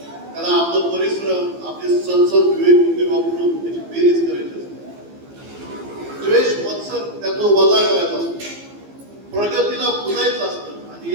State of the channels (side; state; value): left; late; 15 ms